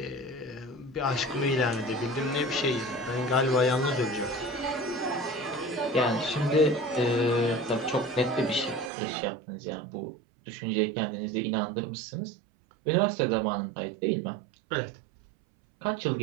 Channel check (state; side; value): drops out; left; at 8.9 s